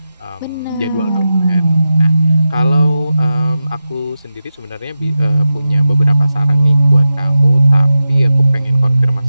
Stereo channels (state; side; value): inverted; both; correlation -0.91